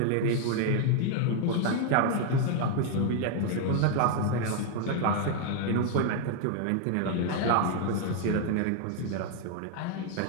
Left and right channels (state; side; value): different; both; correlation 0.00